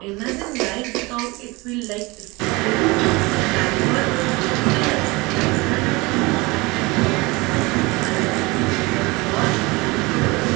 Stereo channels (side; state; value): left; quieter; 24.0 dB